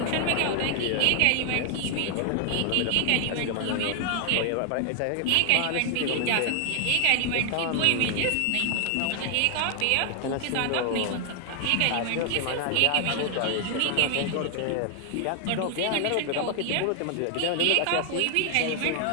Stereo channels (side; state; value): both; different; correlation 0.00